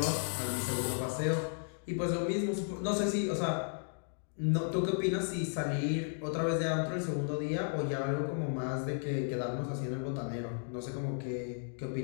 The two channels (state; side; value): silent; right; digital silence